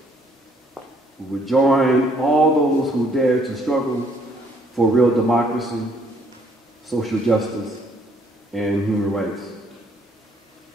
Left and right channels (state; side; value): normal; both; correlation 0.65